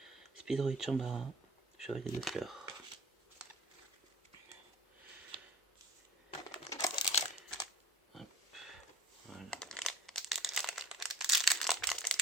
Speedroid Chambara, Chevalier de Fleurs. Hop, voilà.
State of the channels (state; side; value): normal; both; correlation 0.41